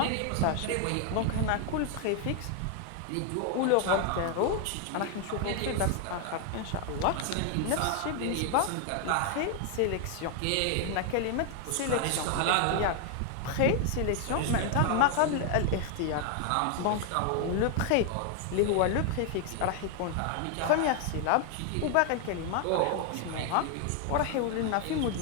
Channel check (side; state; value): both; different; correlation 0.00